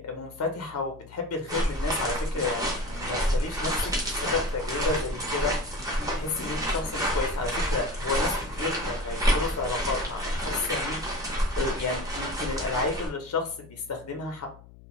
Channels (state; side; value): noise; left; hum, 20 dB below the sound